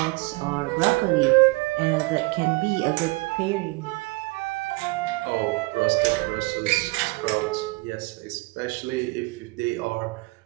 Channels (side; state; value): left; quieter; 25.8 dB